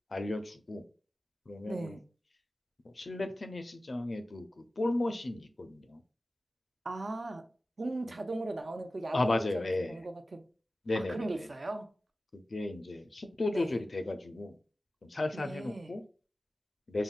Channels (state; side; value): normal; both; correlation 0.95